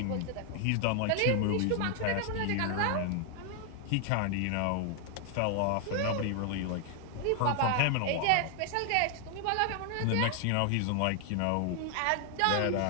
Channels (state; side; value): different; both; correlation 0.00